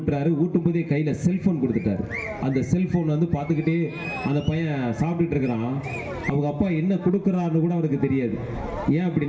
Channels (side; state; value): both; identical; correlation 1.00